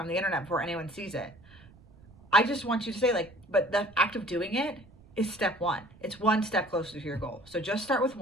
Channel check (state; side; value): noise; right; rumble, 24 dB below the sound